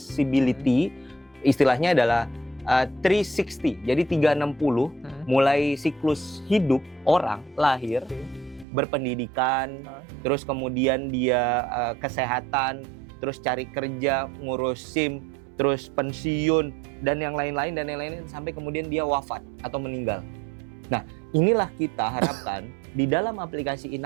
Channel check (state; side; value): drops out; left; at 8.7 s